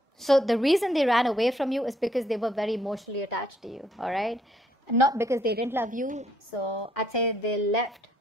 so the reason they ran away from you is because they were very emotionally attached to you. All right, not because they didn't love you. So I'd say they left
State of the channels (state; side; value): normal; both; correlation 0.69